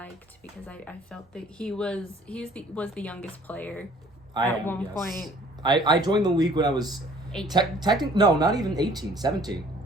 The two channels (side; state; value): both; normal; correlation 0.55